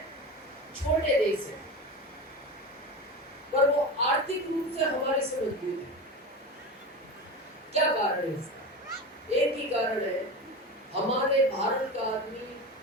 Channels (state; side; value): normal; both; correlation 0.26